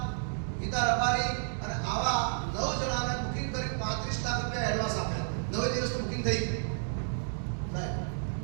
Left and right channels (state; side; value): silent; left; digital silence